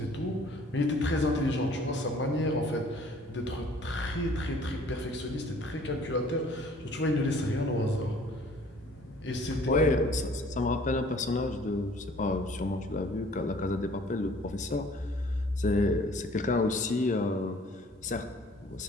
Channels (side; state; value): both; normal; correlation 0.54